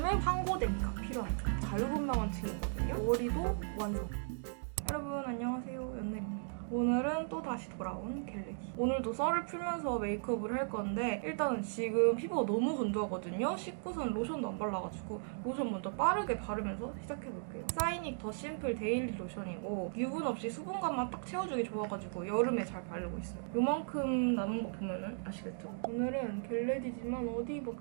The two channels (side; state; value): left; silent; digital silence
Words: 황고데기가 필요한 자유분방한 층이거든요. 머리도 완성. 여러분 안녕하세요, 연늘입니다. 오늘은 또 다시 돌아온 겟레디. 오늘도 썰을 풀면서 메이크업을 할 건데 일단은 지금 피부가 너무 건조하거든요. 씻고선 로션도 안 발라가지고 로션 먼저 빠르게 바르면서 시작해볼게요. 사이닉 더 심플 데일리 로션이고 유분 없이 수분감만 딱 채워주기 좋아가지고 여름에 잘 바르고 있어요. 요만큼 남은 거 보면은 아시겠죠? 오늘은 겟레디지만 어디 뭐